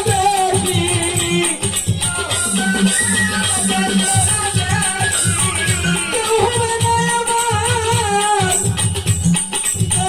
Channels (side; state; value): both; identical; correlation 1.00